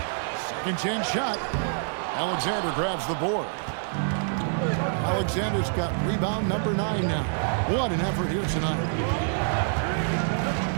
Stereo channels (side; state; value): left; silent; digital silence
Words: Second chance shot. Alexander grabs the board. Alexander's got rebound number 9 now. What an effort here tonight.